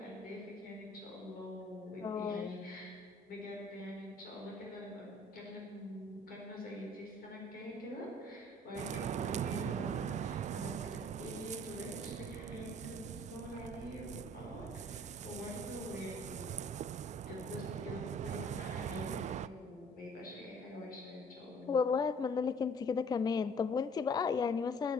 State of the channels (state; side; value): normal; both; correlation 0.55